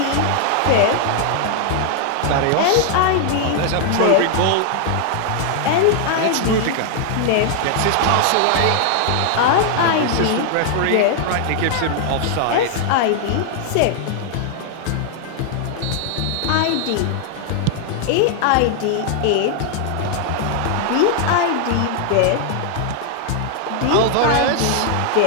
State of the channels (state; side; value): different; both; correlation 0.00